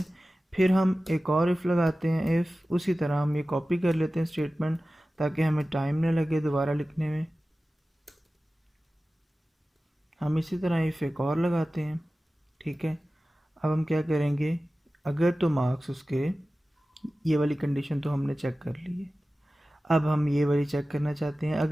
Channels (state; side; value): normal; both; correlation 0.96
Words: फिर हम एक और इफ़ लगाते हैं, इफ़ उसी तरह हम ये कॉपी कर लेते हैं स्टेटमेंट, ताकि हमें टाइम न लगे दोबारा लिखने में। हम इसी तरह इफ़ एक और लगाते हैं। ठीक है। अब हम क्या करेंगे, अगर तो मार्क्स उसके, ये वाली कंडीशन तो हमने चेक कर ली है, अब हम ये वाली चेक करना चाहते हैं,